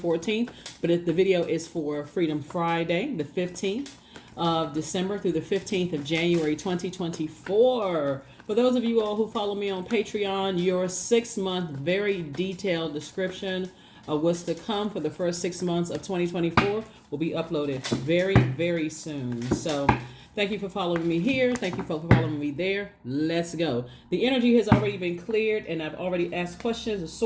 but the video is for Freedom Friday, the 15th of December through the 15th of January 2024. For those of you all who follow me on Patreon, your 6-month very detailed description of what's to come for the first 6 months of 2024 will be uploaded very, very soon. So thank you for following me here. Thank you for following me there. Let's go. The energy has already been cleared, and I've already asked questions, a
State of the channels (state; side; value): identical; both; correlation 1.00